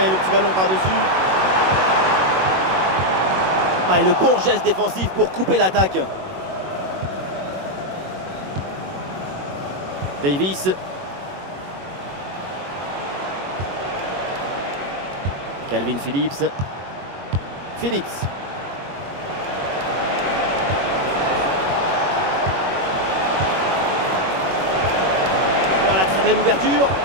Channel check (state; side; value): late; left; 21 ms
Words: le petit ballon par-dessus. Ah, et le bon geste défensif pour couper l'attaque. Davis. Calvin Phillips. Phillips. Voilà, très belle ouverture.